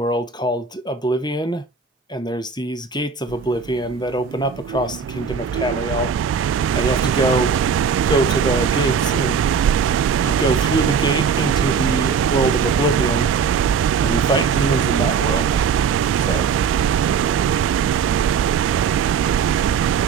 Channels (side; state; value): left; quieter; 5.9 dB